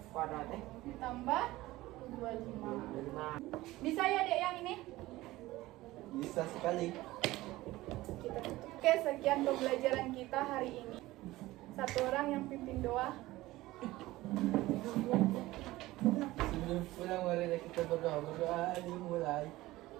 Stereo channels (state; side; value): quieter; left; 17.9 dB